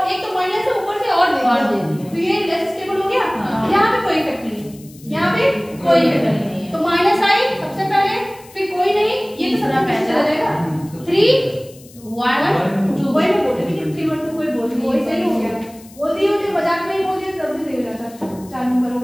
एक तो माइनस है ऊपर से और दे दिया तो ये लेस स्टेबल हो गया। यहाँ पे कोई इफेक्ट नहीं है, यहाँ पे कोई इफेक्ट नहीं है। तो माइनस आई सबसे पहले, फिर कोई नहीं, ये तो सबसे पहले चला जाएगा। 3 1 2 वही मैं बोल रही थी 3 1 2 कोई बोल नहीं, वही सही हो गया। बोल दिए मुझे मजाक में ही बोल दिया तब भी सही हो जाता। 4 नंबर हो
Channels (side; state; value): left; noise; hiss, 23 dB below the sound